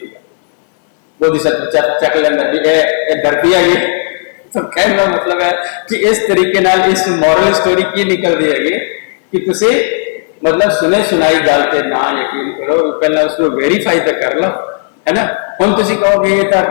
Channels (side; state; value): right; silent; 70 dB below the other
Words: बोधिसत्व चक लेना भी धरती है ये। तो कहने का मतलब है कि इस तरीके नाल इस मॉरल स्टोरी की निकलती है कि तुसी मतलब सुने सुनाई गल पे ना यकीन करो, पहला उसको वेरीफाई तो कर लो है ना। हम तुसी कहोगे ये तो